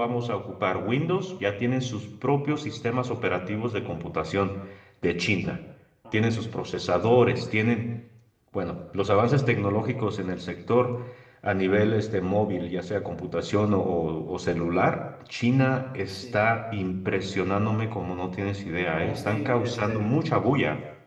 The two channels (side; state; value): both; identical; correlation 1.00